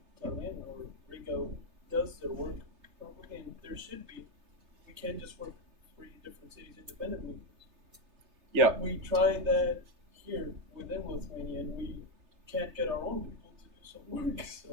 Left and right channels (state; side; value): late; left; 3.3 ms